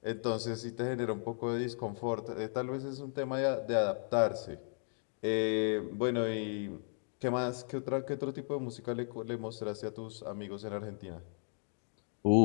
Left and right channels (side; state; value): right; silent; 54 dB below the other